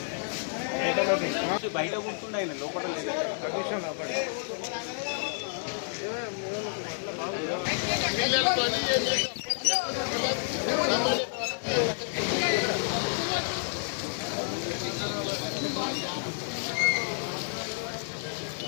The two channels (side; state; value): right; silent; digital silence